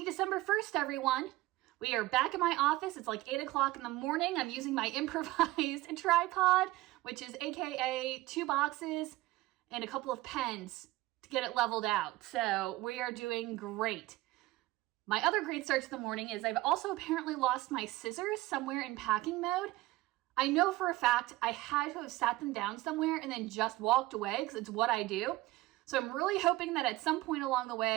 December 1st, everyone. We are back in my office. It's like 8 o'clock in the morning. I'm using my improvised tripod, which is AKA 2 boxes and a couple of pens to get it leveled out. So we are doing great. My other great start to the morning is I've also apparently lost my scissors somewhere in packing mode. I know for a fact I had to have sat them down somewhere and then just walked away because it's what I do. So I'm really hoping that at some point along the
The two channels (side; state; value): left; quieter; 18.2 dB